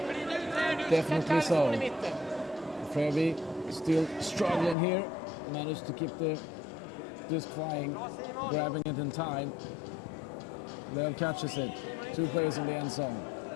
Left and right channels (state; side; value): drops out; right; at 4.8 s